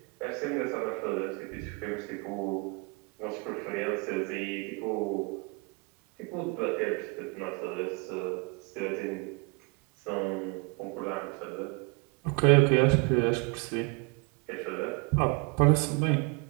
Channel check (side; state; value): left; quieter; 30.5 dB